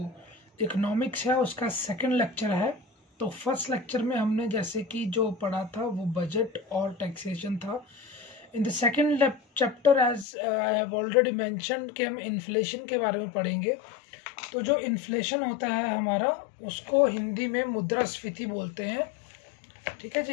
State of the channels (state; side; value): drops out; right; at 10.2 s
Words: इकोनॉमिक्स है उसका सेकंड लेक्चर है। तो फर्स्ट लेक्चर में हमने जैसे कि जो पढ़ा था वो बजट और टैक्सेशन था। In the second chapter as I have already mentioned कि हम इन्फ्लेशन के बारे में पढ़ेंगे। तो जो इन्फ्लेशन होता है हमारा, उसको हिंदी में मुद्रास्फीति बोलते हैं। ठीक है